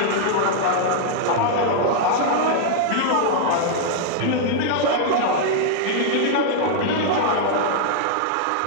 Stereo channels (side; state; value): both; different; correlation -0.01